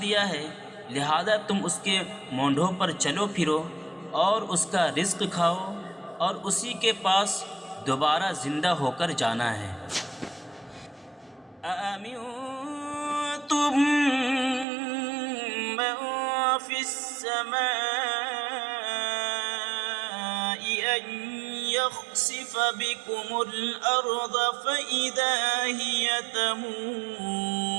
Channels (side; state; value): left; drops out; at 14.7 s